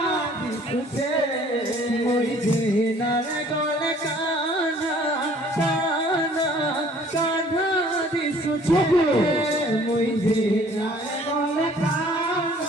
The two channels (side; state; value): both; normal; correlation 0.55